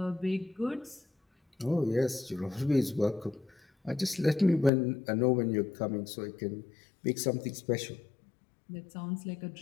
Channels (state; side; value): drops out; right; at 4.7 s